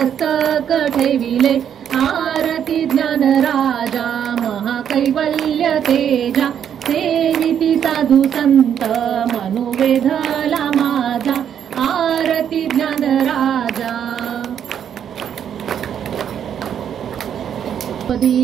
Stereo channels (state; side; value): quieter; left; 8.9 dB